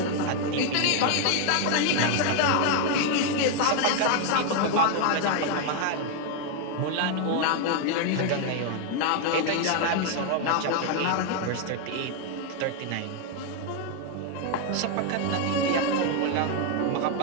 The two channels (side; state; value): both; different; correlation 0.01